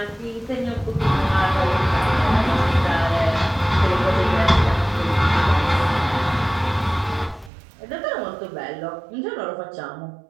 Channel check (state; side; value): drops out; left; at 7.5 s